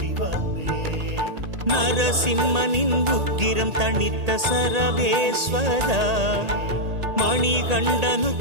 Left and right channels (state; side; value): late; left; 1.8 ms